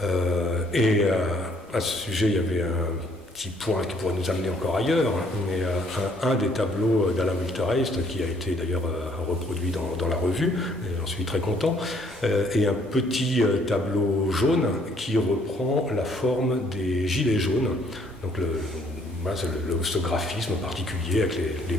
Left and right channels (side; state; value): both; normal; correlation 0.64